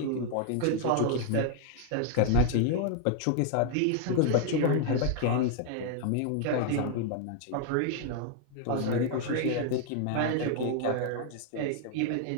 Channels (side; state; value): both; different; correlation 0.00